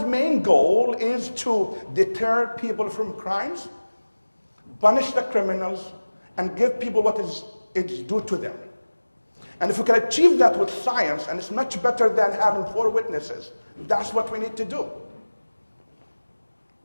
main goal is to deter people from crimes, punish the criminals, and give people what is due to them. And if we can achieve that with science, and it's much better than having 4 witnesses, that's what we need to do.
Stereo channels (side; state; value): both; inverted; correlation -1.00